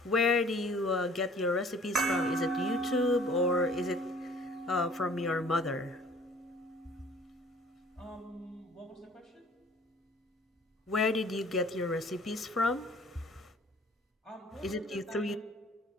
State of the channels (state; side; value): normal; both; correlation 0.53